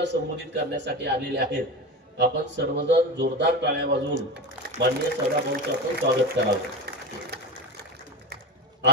संबोधित करण्यासाठी आलेले आहेत. आपण सर्वजण जोरदार टाळ्या वाजवून माननीय सदाभाऊंचं आपण स्वागत करावं.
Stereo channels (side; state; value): both; normal; correlation 0.25